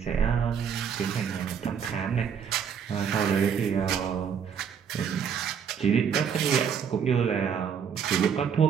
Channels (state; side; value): quieter; left; 7.4 dB